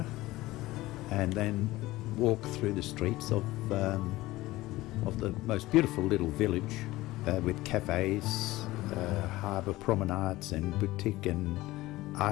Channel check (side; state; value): right; quieter; 18.1 dB